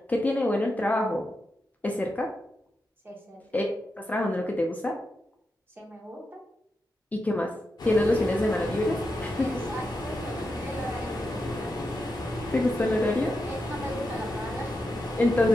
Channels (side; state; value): both; normal; correlation 0.87